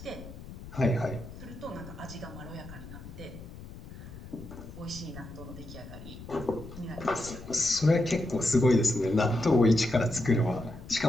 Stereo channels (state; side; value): noise; left; rumble, 14 dB below the sound